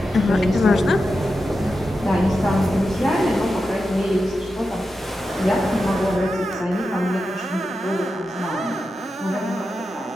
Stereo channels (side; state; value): both; normal; correlation 0.90